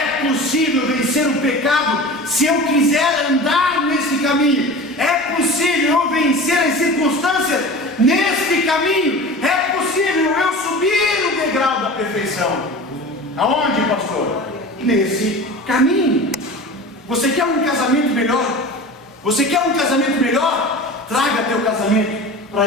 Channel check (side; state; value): both; normal; correlation 0.35